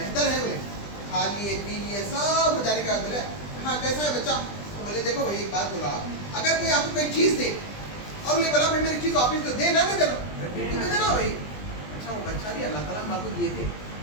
ہے. بولے کھا لیے پی لیے سب ہو جانے کا. بولے ہاں کیسا ہے بچہ؟ تو بولے دیکھو بھائی ایک بات بولا, اگر کوئی آپ کو کوئی چیز دے اور انہیں بولا بھائی میری چیز واپس دو, دے نہ دینا, دے دینا بھائی. اچھا وہ بچہ بھی اللہ تعالیٰ ہم آپ کو دیے تھے,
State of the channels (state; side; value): late; right; 20 ms